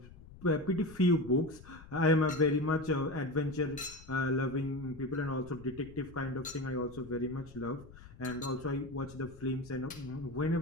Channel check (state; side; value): noise; left; rumble, 18 dB below the sound